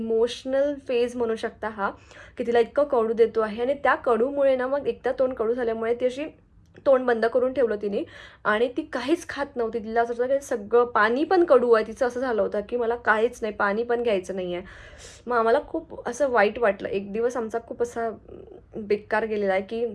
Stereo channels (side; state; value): both; identical; correlation 1.00